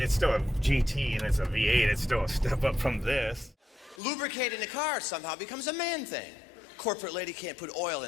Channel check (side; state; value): right; drops out; at 4.0 s